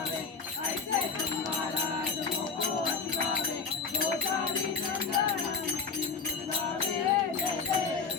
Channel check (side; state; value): right; quieter; 5.0 dB